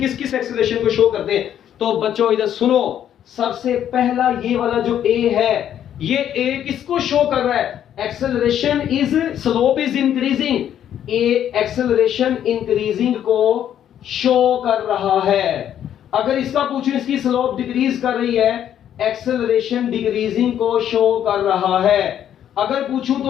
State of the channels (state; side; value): quieter; right; 10.2 dB